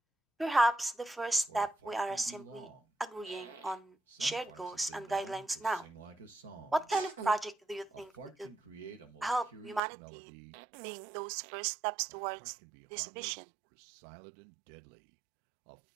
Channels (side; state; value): left; drops out; at 9.8 s